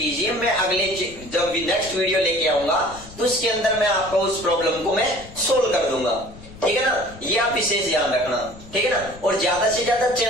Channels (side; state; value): left; noise; rumble, 18 dB below the sound